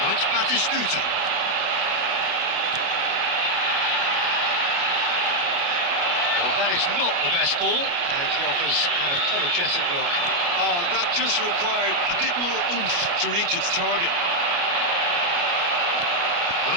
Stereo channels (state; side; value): late; left; 29 ms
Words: Now it's Batistuta. Well, that is not the best ball, and he offers an apologetic look. Oh, that just required a bit more oomph to reach its target. Now